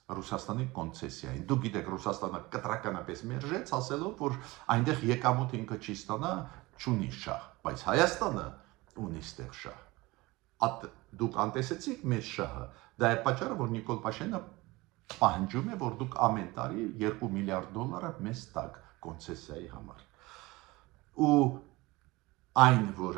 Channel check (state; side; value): quieter; left; 21.5 dB